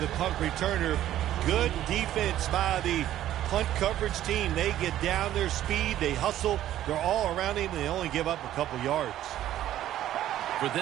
punt returner. Good defense by the punt coverage team. They get down their speed. They hustle. They're all around him, and they only give up a couple yards. For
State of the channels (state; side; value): quieter; left; 12.6 dB